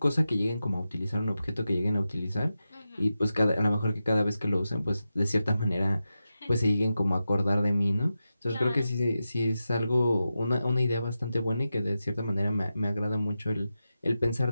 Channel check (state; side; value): inverted; both; correlation -0.91